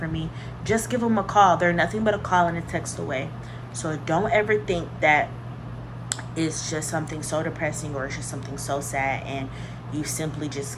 me. Just give them a call. They're nothing but a call and a text away. So don't ever think that it's just something so depressing or it's just something so sad and you simply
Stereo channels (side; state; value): both; identical; correlation 1.00